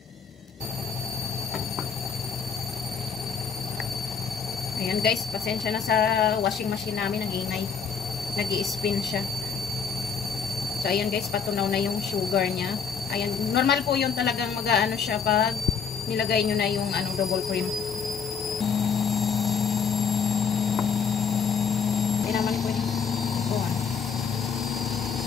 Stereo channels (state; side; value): quieter; right; 6.4 dB